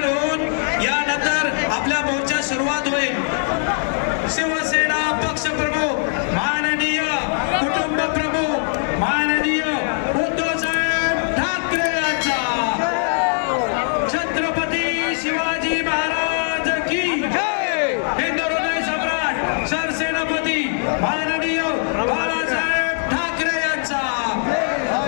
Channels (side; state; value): right; silent; digital silence